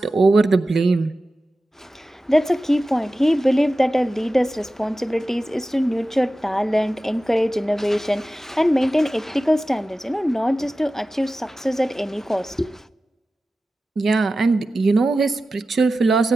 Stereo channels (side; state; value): both; normal; correlation 0.94